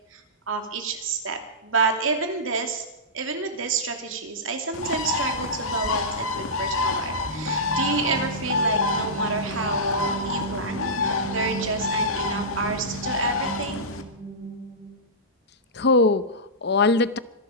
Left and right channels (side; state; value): both; normal; correlation -0.15